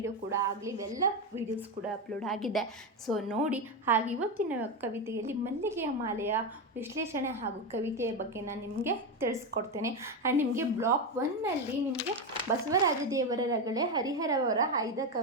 ಕೂಡ ಆಗಲಿ ಇವೆಲ್ಲ ವೀಡಿಯೋಸ್ ಕೂಡ ಅಪ್ಲೋಡ್ ಆಗಿದೆ. ಸೊ ನೋಡಿ. ಹಾಗೆ ಇವತ್ತಿನ ಕವಿತೆಯಲ್ಲಿ ಮಲ್ಲಿಗೆಯ ಮಾಲೆಯ ವಿಶ್ಲೇಷಣೆ ಹಾಗೂ ಕವಿತೆಯ ಬಗ್ಗೆ ನಾನು ನಿಮಗೆ ತಿಳಿಸ್ಕೊಡ್ತೇನೆ. ಆ್ಯಂಡ್ ನಿಮಗೆ ಬ್ಲಾಕ್ 1ನಲ್ಲಿ ನಿಮಗೆ ಬಸವರಾಜ ದೇವರ ರಗಳೆ ಹರಿಹರವರ ಆಯ್ದ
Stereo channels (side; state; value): both; normal; correlation 0.12